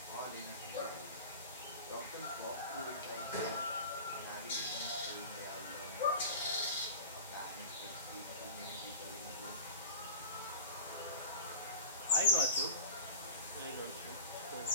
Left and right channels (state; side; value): inverted; both; correlation -0.37